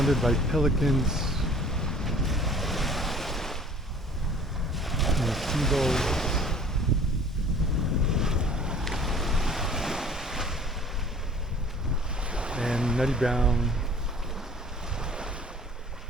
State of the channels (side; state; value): both; normal; correlation 0.50